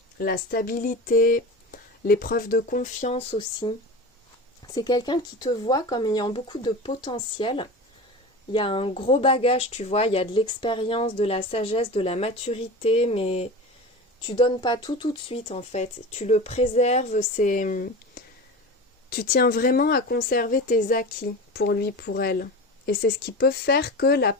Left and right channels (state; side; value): normal; both; correlation 0.30